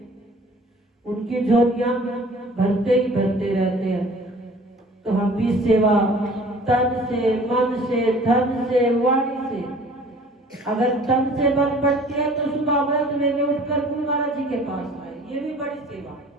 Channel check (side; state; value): both; normal; correlation 0.49